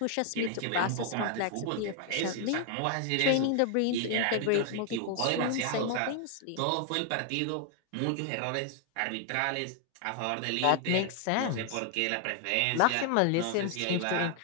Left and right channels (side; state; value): both; different; correlation 0.00